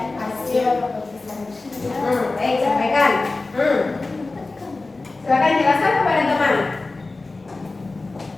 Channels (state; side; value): quieter; right; 3.4 dB